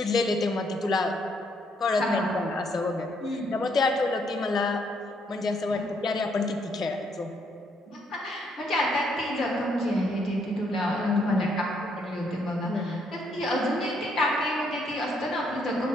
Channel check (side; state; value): both; normal; correlation 0.72